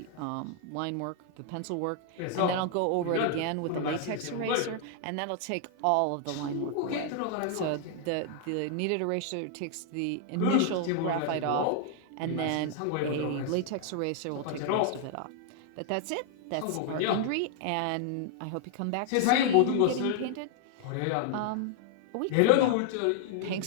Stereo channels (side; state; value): both; different; correlation 0.00